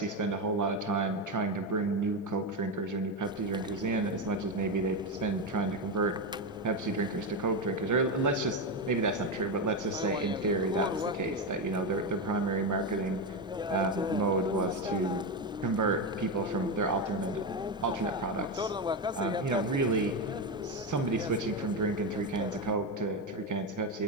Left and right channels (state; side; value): normal; both; correlation 0.12